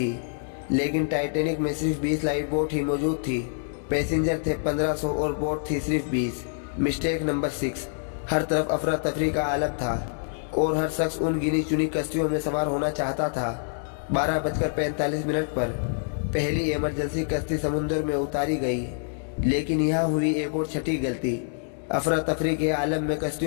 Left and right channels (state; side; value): silent; right; digital silence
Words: लेकिन टाइटैनिक में सिर्फ 20 लाइफ बोट ही मौजूद थी। पैसेंजर थे 1500 और बोट थी सिर्फ 20। मिस्टेक नंबर 6, हर तरफ अफरा तफरी का आलम था और हर शख्स उन गिनी चुनी कश्तियों में सवार होना चाहता था। 12:45 पर पहली इमरजेंसी कश्ती समुद्र में उतारी गई, लेकिन यहाँ हुई एक और छठी गलती। अफरा तफरी के आलम में